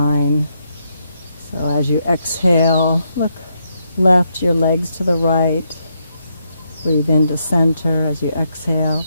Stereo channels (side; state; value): both; inverted; correlation -0.79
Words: So as you exhale, look left, your legs to the right. Breathe into center as you exhale.